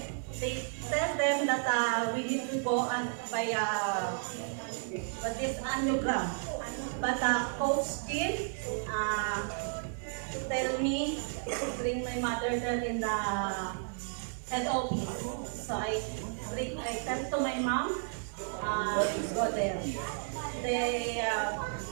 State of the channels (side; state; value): left; silent; 56 dB below the other